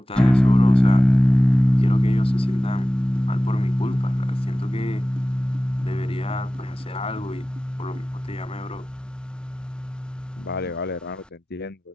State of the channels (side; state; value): both; normal; correlation 0.96